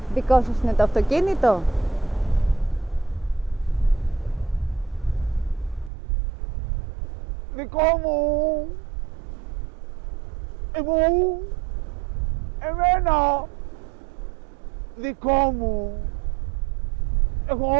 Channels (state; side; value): drops out; left; at 5.9 s